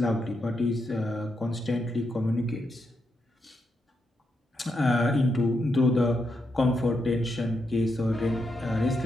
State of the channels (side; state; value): both; normal; correlation 0.83